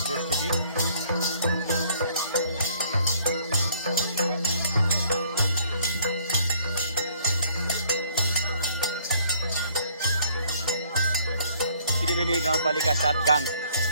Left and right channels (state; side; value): inverted; both; correlation -0.61